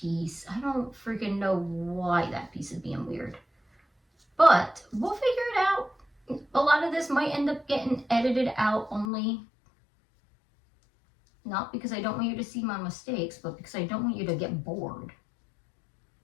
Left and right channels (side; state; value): right; drops out; at 9.1 s